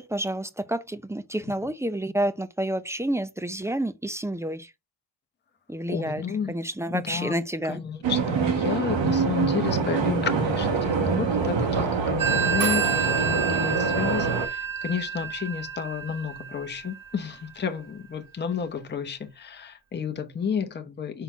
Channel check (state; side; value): normal; both; correlation 0.25